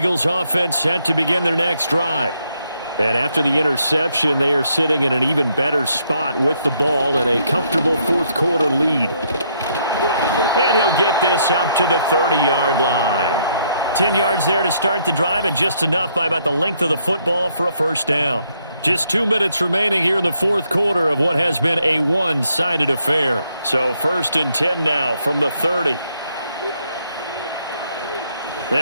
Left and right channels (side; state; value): both; inverted; correlation -0.72